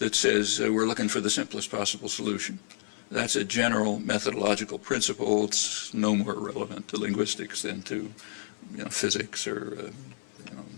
says we're looking for the simplest possible solution. That's a general methodological principle. It's no more relevant to linguistics than to physics or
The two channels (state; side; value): silent; right; 58 dB below the other